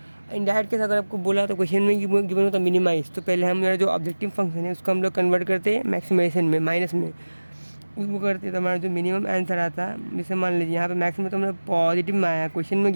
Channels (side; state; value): both; inverted; correlation -1.00